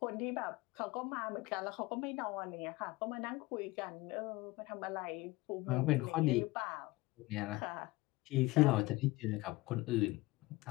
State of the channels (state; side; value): quieter; right; 20.7 dB